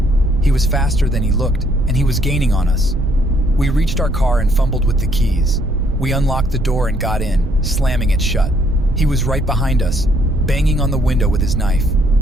He was faster than he looked, and he was gaining on us. We reached our car and fumbled with the keys. We unlocked the door and got in, slamming it shut. He was right behind us, banging on the window with his knife.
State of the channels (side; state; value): right; noise; rumble, 7 dB below the sound